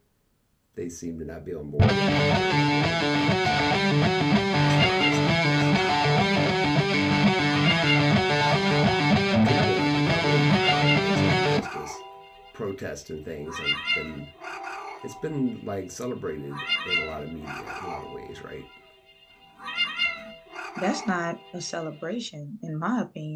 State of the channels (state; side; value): identical; both; correlation 1.00